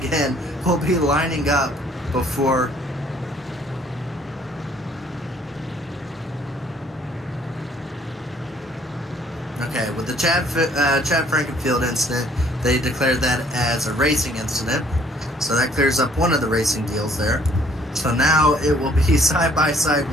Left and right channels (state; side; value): normal; both; correlation 0.61